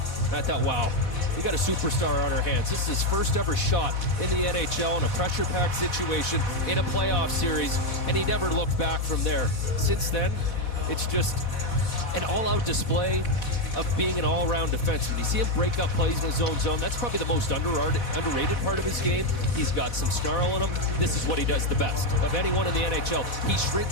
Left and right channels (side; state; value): right; late; 4.1 ms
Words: And I thought, wow, we got a superstar on our hands. This is his first ever shot in the NHL in a pressure-packed situation in a playoff series, and he never looked back from there. Since then, it's just an all-out display of being an all-around defenseman. You see him break up plays in his own zone. That's probably the most underrated part of his game. He's got some snarl in him. This is what he does the best of anyone in the NHL. He